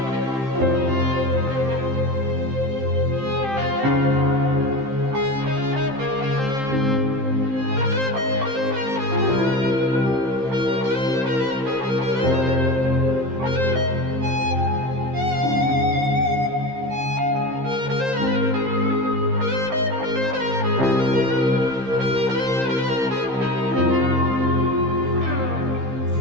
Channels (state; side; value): late; left; 15 ms